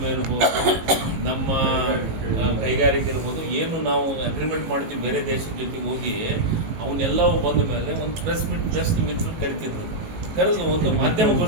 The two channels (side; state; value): left; late; 18 ms